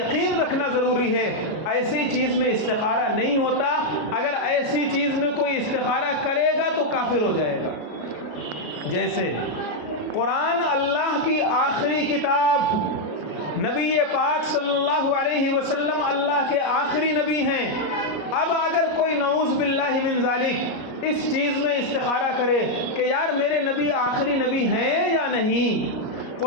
رکھنا ضروری ہے، ایسی چیز میں استخارہ نہیں ہوتا۔ اگر ایسی چیز میں کوئی استخارہ کرے گا تو کافر ہو جائے گا۔ جیسے قرآن اللہ کی آخری کتاب، نبی پاک صلی اللہ علیہ وسلم اللہ کے آخری نبی ہیں۔ اب اگر کوئی نعوذ باللہ من ذالک اس چیز میں استخارہ کرے کہ یار میرے نبی آخری نبی ہیں یا نہیں،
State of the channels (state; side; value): late; right; 33 ms